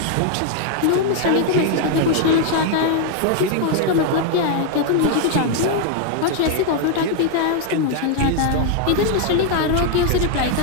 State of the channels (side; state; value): both; different; correlation 0.00